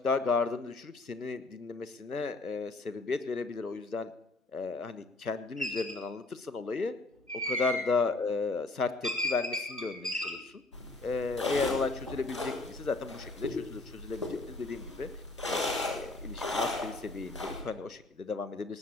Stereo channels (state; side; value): quieter; right; 3.2 dB